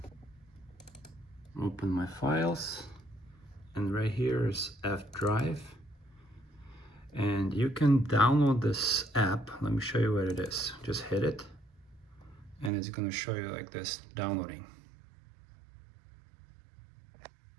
open my files, and right here is F drive. And you can download this app. Let me show you what it is. Just hit it, and it's going to show you like this, downloading.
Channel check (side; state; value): left; drops out; at 12.7 s